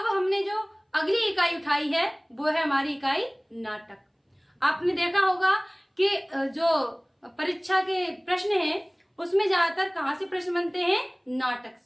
हमने जो अगली इकाई उठाई है वो है हमारी इकाई नाटक। आपने देखा होगा कि जो परीक्षा के प्रश्न हैं उसमें ज्यादातर कहाँ से प्रश्न बनते हैं? नाटक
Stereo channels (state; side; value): identical; both; correlation 1.00